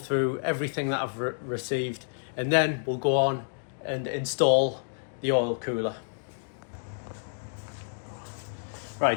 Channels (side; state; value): right; silent; digital silence